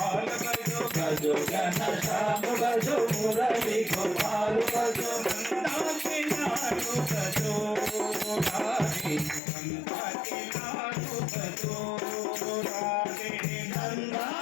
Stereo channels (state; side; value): drops out; right; at 9.4 s